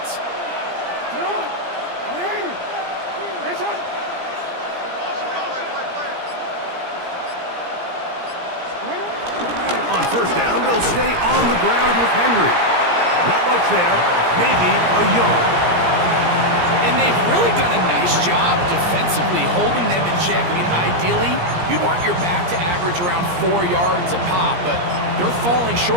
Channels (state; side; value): late; left; 17 ms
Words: On first down, they'll stay on the ground with Henry. Not much there, maybe a yard. And they've really done a nice job defensively holding them in check. I mean, ideally, you'd want your back to average around 4 yards a pop, but they're falling